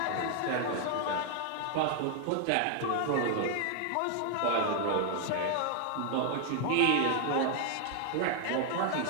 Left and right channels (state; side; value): different; both; correlation 0.00